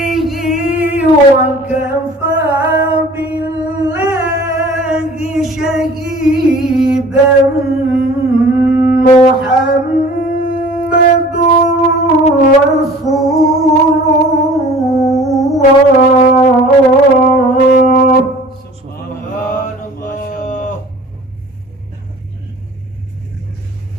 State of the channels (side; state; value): both; normal; correlation 0.46